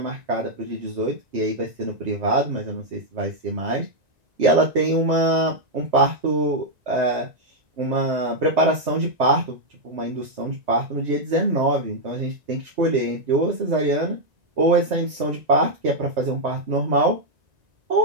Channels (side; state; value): left; late; 1.9 ms